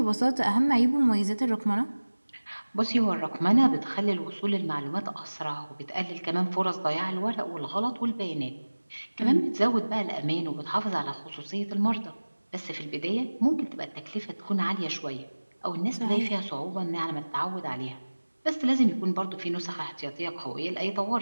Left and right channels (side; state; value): both; inverted; correlation -1.00